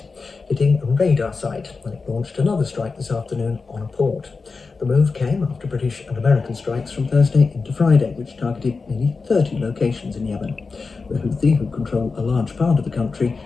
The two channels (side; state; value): right; quieter; 4.4 dB